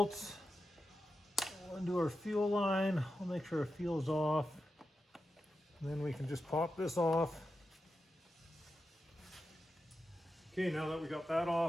We'll undo our fuel line. We'll make sure our fuel's off. And then we can just pop this off. Okay, now that we got that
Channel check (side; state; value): both; normal; correlation 0.89